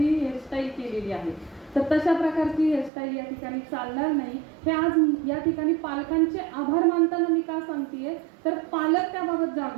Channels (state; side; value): drops out; left; at 2.9 s